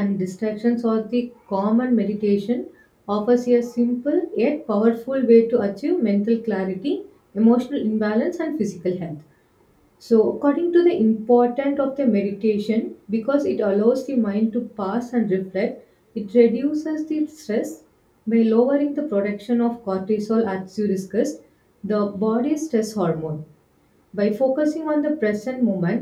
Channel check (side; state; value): both; identical; correlation 1.00